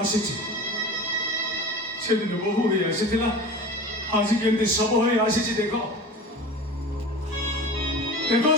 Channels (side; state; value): both; normal; correlation 0.35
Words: ଆସିଛି ସେଦିନ ବୋହୂ ହେଇ ଆସିଥିଲା ଆଜି କେମିତି ଶବ ହୋଇ ଆସିଛି ଦେଖ ଦେଖ